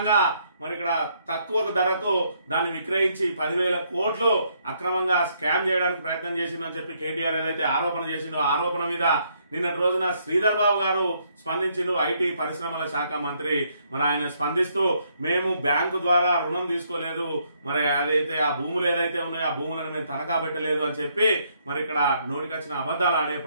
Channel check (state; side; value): inverted; both; correlation -0.72